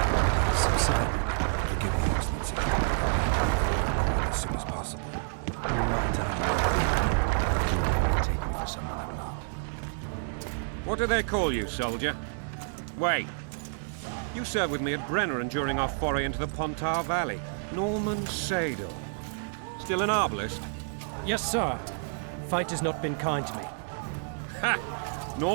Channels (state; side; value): silent; left; digital silence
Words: subsided. Forgive me, Excellency. As soon as possible. Might I? Take me for someone I'm not. What do they call you, soldier? Wait. You served with me at Brenneran during our foray into the Pontar Valley. Norman Sador. Still an arbalist? Yes, sir. Fight has not been kind to me. Ha!